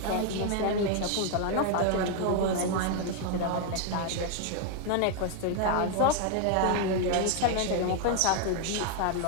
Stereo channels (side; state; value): both; different; correlation 0.00